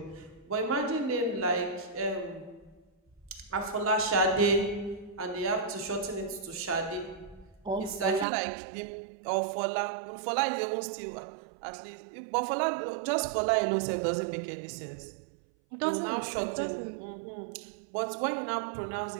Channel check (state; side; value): drops out; left; at 8.2 s